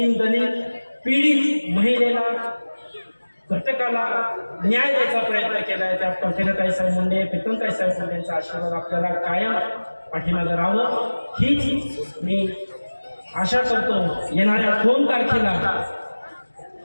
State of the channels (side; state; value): both; inverted; correlation -1.00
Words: पीडित महिलेला, घटकाला न्याय द्यायचा प्रयत्न केला आहे. त्या पंकजाताईसाहेब मुंडे, प्रीतमताईसाहेब मुंडेंचा आशीर्वाद आपल्याला कायम पाठीमागे राहावं, हीच मी आशा करतो. येणाऱ्या 2 तारखेला